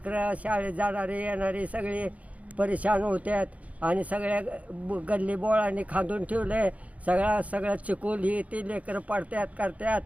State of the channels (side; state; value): left; late; 0.068 ms